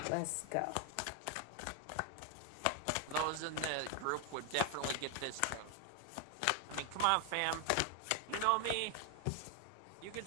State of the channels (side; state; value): both; different; correlation 0.01